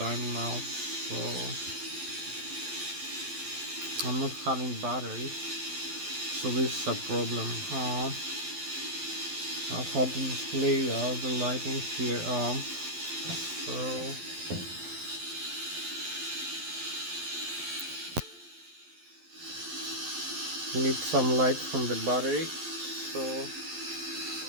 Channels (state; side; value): late; left; 12 ms